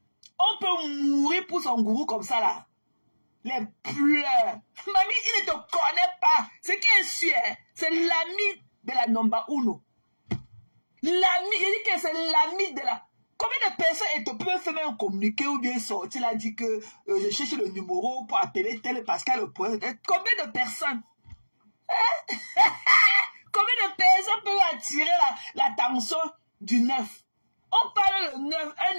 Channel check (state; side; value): inverted; both; correlation -1.00